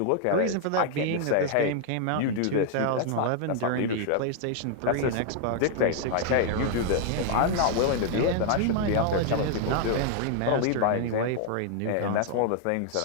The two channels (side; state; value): both; different; correlation 0.00